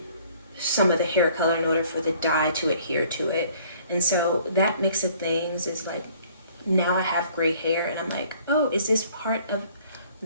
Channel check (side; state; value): both; inverted; correlation -0.57